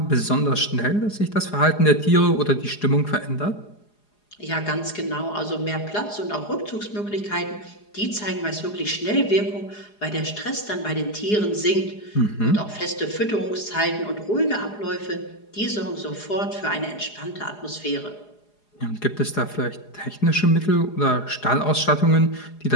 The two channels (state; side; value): late; right; 4.8 ms